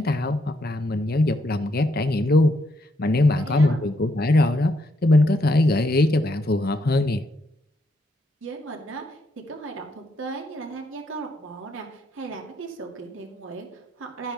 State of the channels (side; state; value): both; normal; correlation 0.76